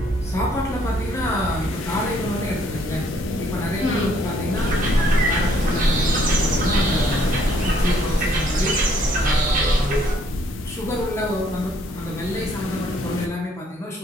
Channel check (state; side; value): normal; both; correlation 0.65